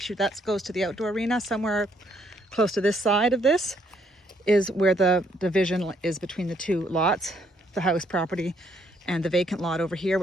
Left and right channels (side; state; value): both; normal; correlation 0.70